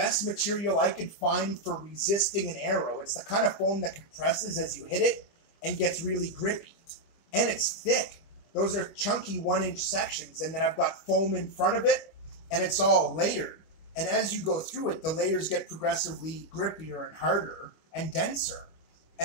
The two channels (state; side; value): late; right; 25 ms